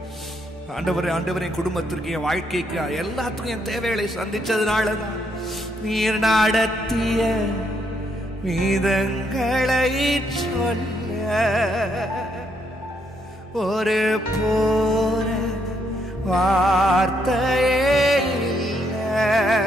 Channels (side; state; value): both; normal; correlation 0.75